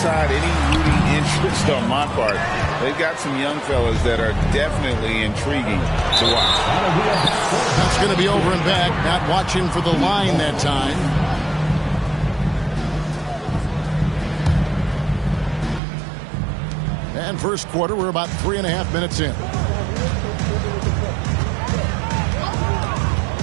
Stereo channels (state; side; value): drops out; left; at 15.8 s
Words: any rooting interest on my part, they've got some young fellas that are definitely intriguing to watch. That's going to be over and back, not watching for the line that time. And first quarter, we're about 3.5 minutes in.